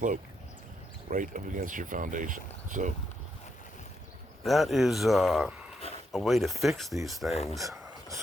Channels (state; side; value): normal; both; correlation 0.79